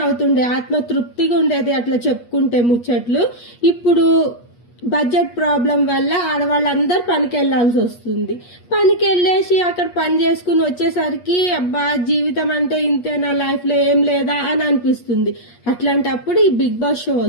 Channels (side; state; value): right; late; 8.4 ms